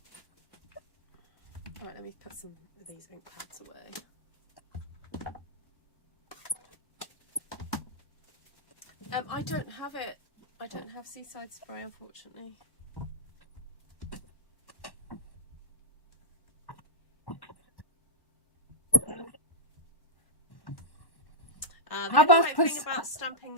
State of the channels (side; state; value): right; late; 1.1 ms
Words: All right, let me put some of these ink pads away. I don't have it. I don't have seaside spray, unfortunately. The only thing about stamping